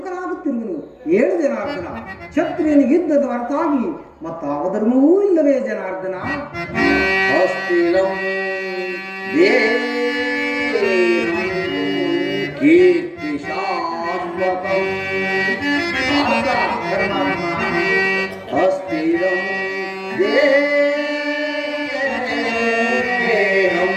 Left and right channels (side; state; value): both; identical; correlation 1.00